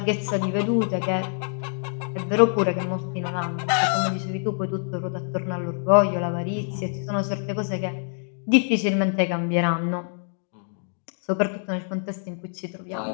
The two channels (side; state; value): right; silent; 61 dB below the other